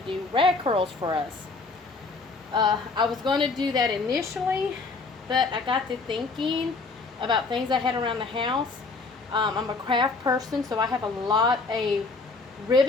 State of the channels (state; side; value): quieter; right; 4.0 dB